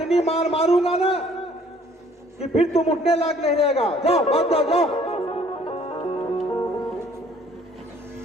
मार मारूंगा ना कि फिर तुम उठने लायक नहीं रहेगा। जाओ, भाग जाओ, जाओ।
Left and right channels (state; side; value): normal; both; correlation 0.58